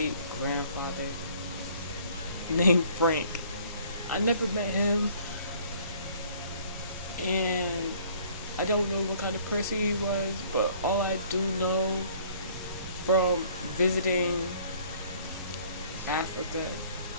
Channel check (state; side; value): inverted; both; correlation -0.56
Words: grandfather named Frank. I never met him, and I don't know what kind of person he was, but all I do know from visiting Africa